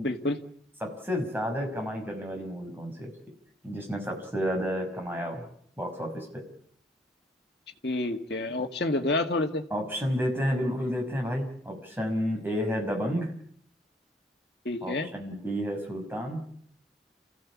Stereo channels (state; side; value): normal; both; correlation 0.64